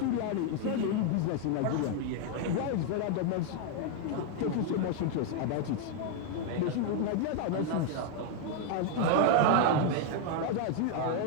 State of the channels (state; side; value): different; both; correlation 0.01